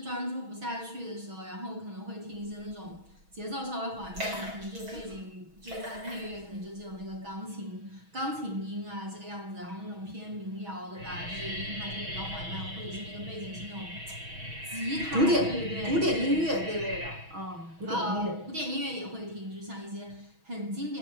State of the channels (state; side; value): late; left; 6.2 ms